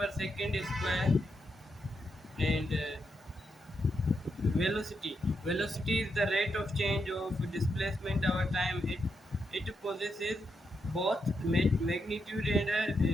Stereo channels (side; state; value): both; normal; correlation 0.83